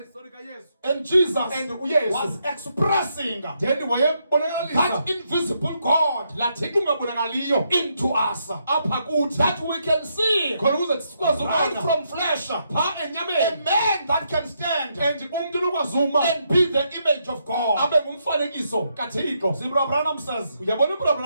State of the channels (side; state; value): both; inverted; correlation -0.78